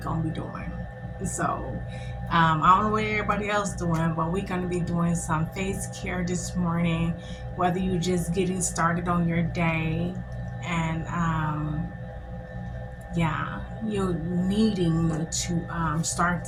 be doing. So I don't know what everybody else doing, but we're gonna be doing some face care this morning, whether you're just getting started on your day and yeah, you're needing to start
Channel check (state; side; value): identical; both; correlation 1.00